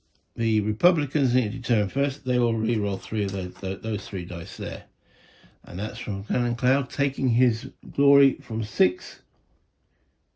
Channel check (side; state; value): both; identical; correlation 1.00